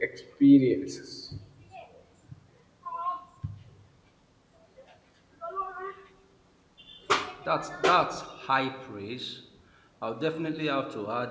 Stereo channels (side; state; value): both; identical; correlation 1.00